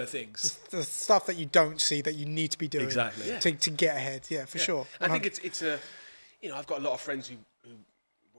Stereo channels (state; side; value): inverted; both; correlation -1.00